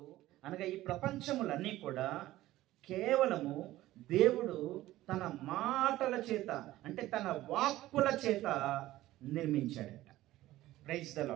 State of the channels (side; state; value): left; quieter; 15.8 dB